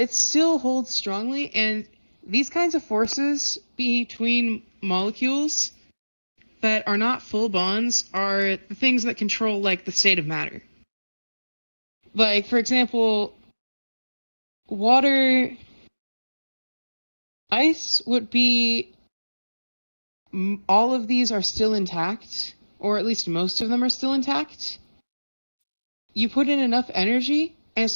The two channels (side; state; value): both; inverted; correlation -1.00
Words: still holds strongly, and these kinds of forces between molecules that are not full bonds are the things that control like the state of matter. Like, for example, water, ice would be, all of these are still intact, or at least most of them are still intact. You put in enough energy, and